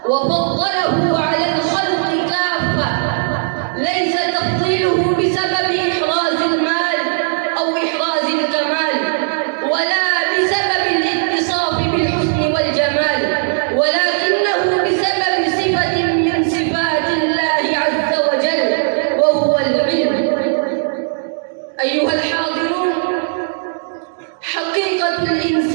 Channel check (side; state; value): left; silent; digital silence